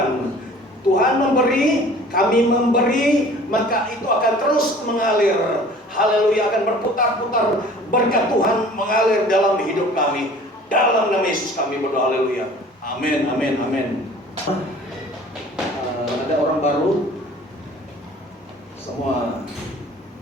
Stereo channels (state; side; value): normal; both; correlation 0.48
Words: Tuhan memberi, kami memberi, maka itu akan terus mengalir. Haleluya, akan berputar-putar berkat Tuhan mengalir dalam hidup kami. Dalam nama Yesus kami berdoa, haleluya. Amin, amin, amin. Ada orang baru, semua